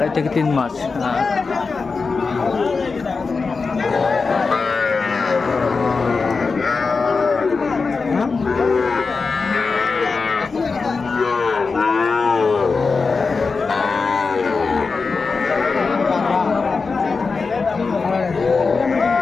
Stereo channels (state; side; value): quieter; right; 4.5 dB